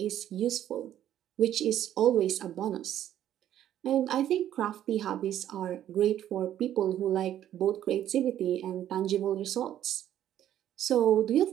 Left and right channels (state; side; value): quieter; left; 11.4 dB